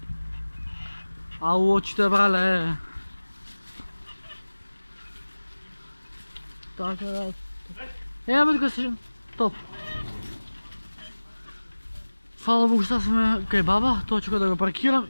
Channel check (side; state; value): both; inverted; correlation -1.00